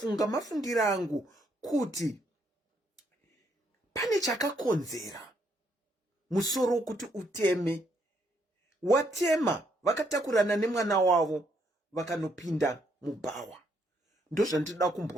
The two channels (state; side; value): normal; both; correlation 0.72